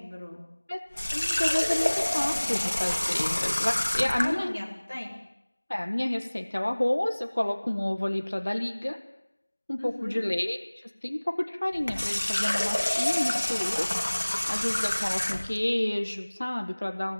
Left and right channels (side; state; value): both; inverted; correlation -1.00